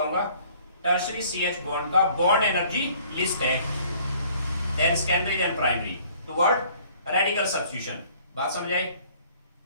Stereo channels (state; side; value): inverted; both; correlation -0.56